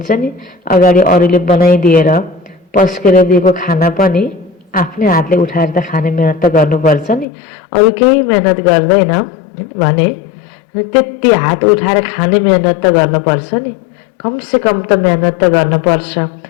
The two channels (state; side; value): drops out; right; at 7.2 s